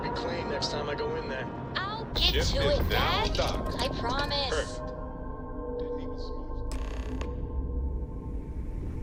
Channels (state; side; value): identical; both; correlation 1.00